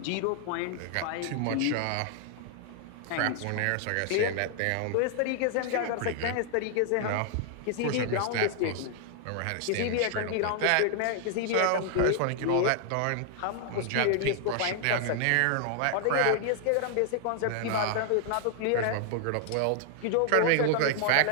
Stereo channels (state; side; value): different; both; correlation 0.00